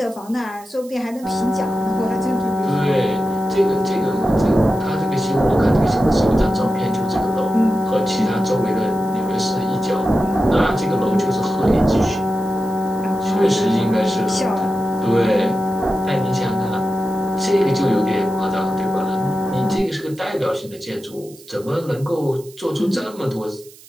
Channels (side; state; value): right; noise; hiss, 22 dB below the sound